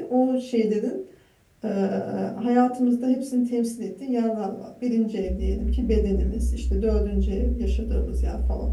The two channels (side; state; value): both; identical; correlation 1.00